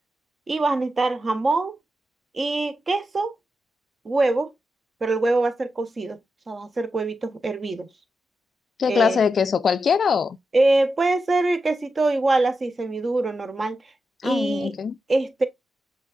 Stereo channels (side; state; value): both; normal; correlation 0.88